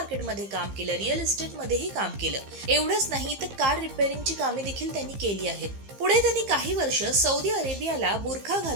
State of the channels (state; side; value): late; left; 15 ms